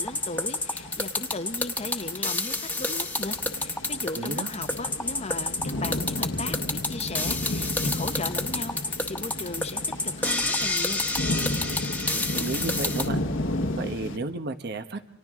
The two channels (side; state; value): both; normal; correlation 0.21